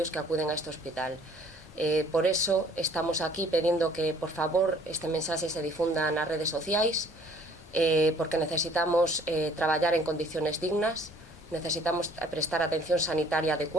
que acuden a este hospital. Por eso estamos aquí pedindo que, por favor, este mensaxe se difunda nas redes sociais, porque necesitamos traballar en condiciones dignas, necesitamos prestar atención sanitaria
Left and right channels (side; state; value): both; normal; correlation 0.56